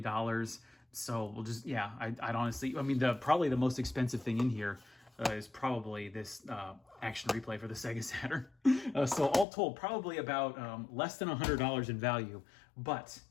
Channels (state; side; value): drops out; right; at 9.5 s